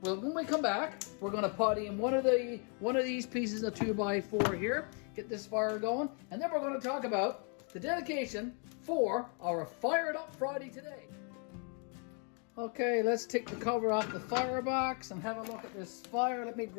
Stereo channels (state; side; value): quieter; right; 39.3 dB